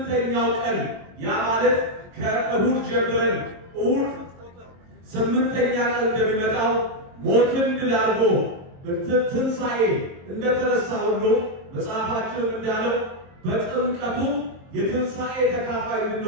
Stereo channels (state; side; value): late; left; 22 ms